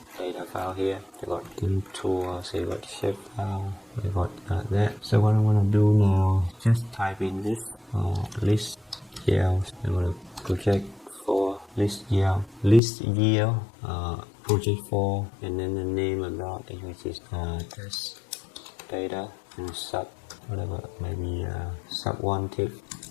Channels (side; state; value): right; drops out; at 12.8 s